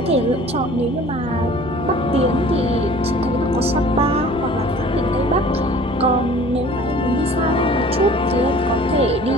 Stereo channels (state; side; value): normal; both; correlation 0.47